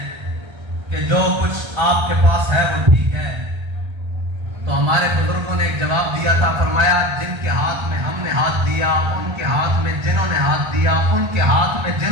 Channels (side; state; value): left; late; 1.3 ms